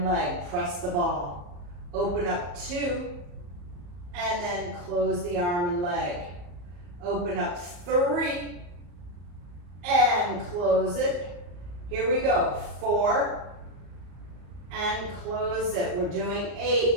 leg. Press the ball. Open up 2, and then close the arm and leg. Open up 3, and close it. Here we go. 4, and close it. We're doing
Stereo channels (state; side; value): late; left; 34 ms